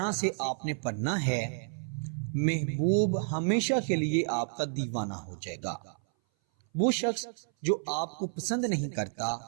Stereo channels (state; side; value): silent; left; 57 dB below the other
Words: سے آپ نے پڑھنا ہے، محبوب ہمیشہ کے لیے آپ کا دیوانہ ہو جائے گا۔ وہ شخص جو آپ کو پسند نہیں کرتا،